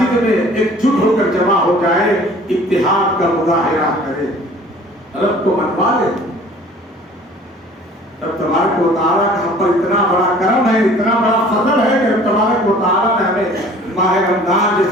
میں ایک جٹ ہو کر جمع ہو جائے، اتحاد کا مظاہرہ کرے، رب کو منوا لے۔ رب تبارک و تعالیٰ کا ہم پر اتنا بڑا کرم ہے، اتنا بڑا فضل ہے کہ رب تبارک و تعالیٰ نے ہمیں ماہ رمضان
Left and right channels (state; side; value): normal; both; correlation 0.50